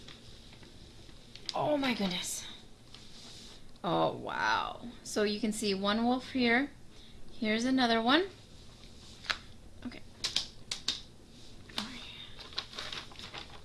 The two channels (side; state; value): both; identical; correlation 1.00